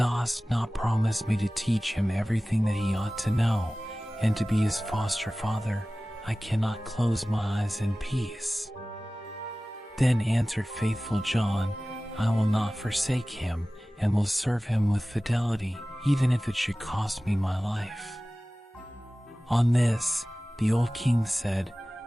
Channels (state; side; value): normal; both; correlation 0.97